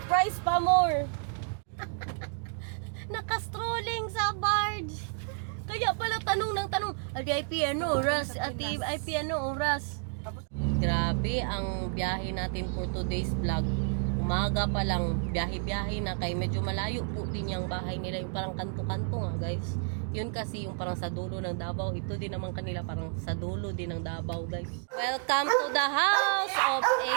pa more! Nakastrolling sa barge! Kaya pala tanong ng tanong, Ati IP ano oras? Ati IP ano oras? Grabe ang biyahe natin for today's vlog. Umaga pa lang, biyahe-biyahe na, kay medyo malayo po din yung bahay nila, yung parang kanto-kanto nga guys. Yun kasi yung parang sa dulo ng Davao. Ito din naman kanila parang sa dulo din ng Davao guys. Welcome to the house of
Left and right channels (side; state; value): left; silent; 57 dB below the other